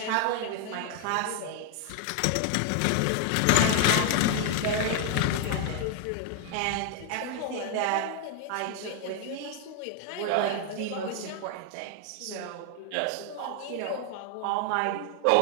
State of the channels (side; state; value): both; different; correlation 0.00